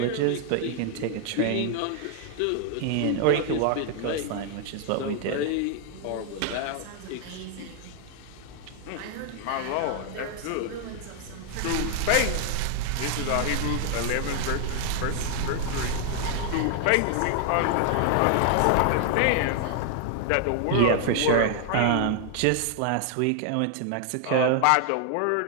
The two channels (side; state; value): both; different; correlation 0.00